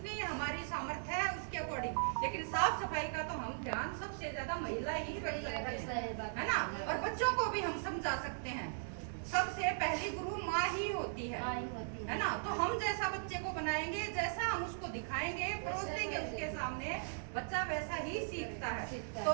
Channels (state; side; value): silent; left; digital silence